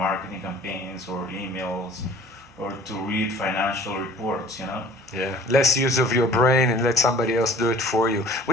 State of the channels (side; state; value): both; normal; correlation 0.48